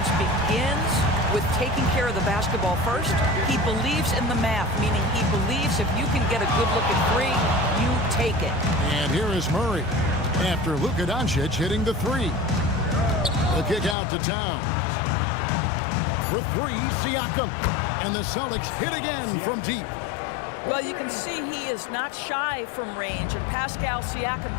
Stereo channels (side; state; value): right; drops out; at 14.0 s